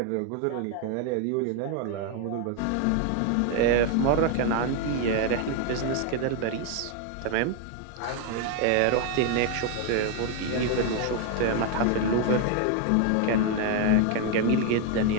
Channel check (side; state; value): both; different; correlation 0.01